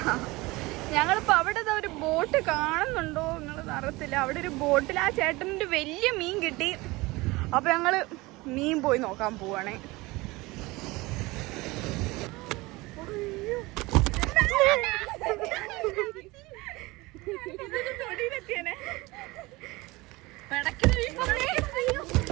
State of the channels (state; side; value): quieter; left; 22.0 dB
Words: ഞങ്ങളിപ്പോൾ അവിടെ ഒരു ബോട്ട് കാണുന്നുണ്ടോ നിങ്ങൾ അറിയത്തില്ല. അവിടെ ഒരു ബോട്ടിൽ ആ ചേട്ടനൊരു വലിയ മീൻ കിട്ടി. അപ്പൊ ഞങ്ങള് മീൻ പോയി നോക്കാൻ പോവാണേ.